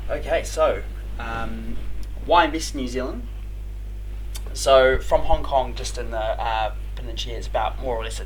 Okay, so why invest in New Zealand? So from Hong Kong, just in the peninsula, it's about more or less a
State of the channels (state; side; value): identical; both; correlation 1.00